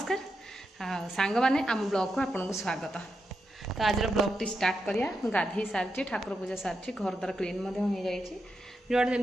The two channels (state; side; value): normal; both; correlation 0.86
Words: सांग माने आम ब्लॉग को आपन को स्वागत। तो आज ब्लॉग टी स्टार्ट करिया गाधी सारी ठाकुर पूजा सारी घर द्वार क्लीन हो जाइए जोड़